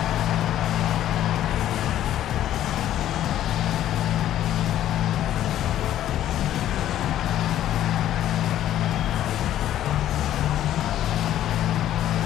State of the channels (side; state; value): right; quieter; 12.2 dB